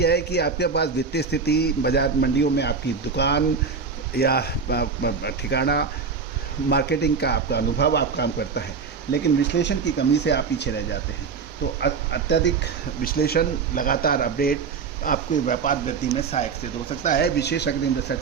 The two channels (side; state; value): left; quieter; 5.5 dB